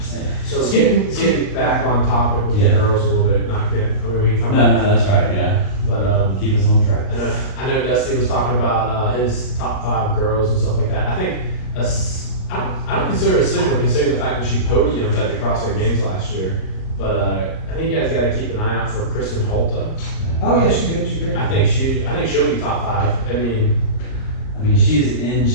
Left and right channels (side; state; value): right; late; 38 ms